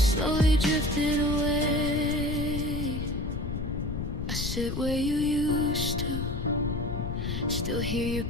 drifted away. I sit where you used to, still hear your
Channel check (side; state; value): left; noise; rumble, 4 dB below the sound